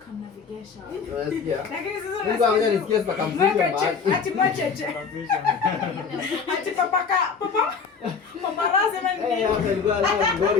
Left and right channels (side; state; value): right; quieter; 5.6 dB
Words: Lakini sasa Mungu anakuja nisikie sasa kamzuri mahali. ati macheche. Ati papa paparazzi mani. Hapa ilikuwa